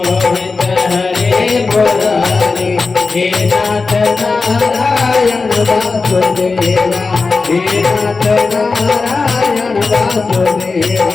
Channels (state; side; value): quieter; right; 4.2 dB